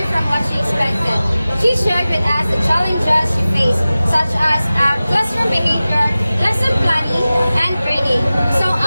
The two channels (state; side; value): inverted; both; correlation -0.96